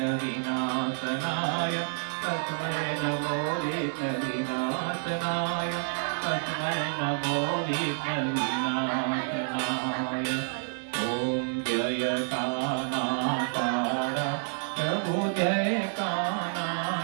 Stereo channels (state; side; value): silent; left; digital silence